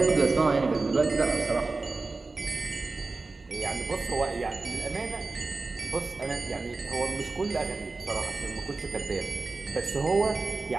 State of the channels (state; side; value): quieter; left; 3.7 dB